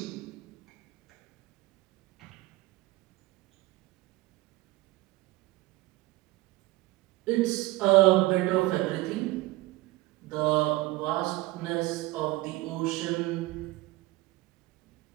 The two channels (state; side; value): quieter; left; 19.5 dB